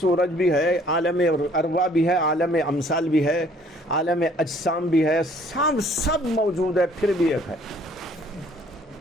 بھی ہے، عالم ارواح بھی ہے، عالم امثال بھی ہے، عالم اجسام بھی ہے، سب موجود ہے، پھر بھی ایک ہے۔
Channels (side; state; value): both; normal; correlation 0.58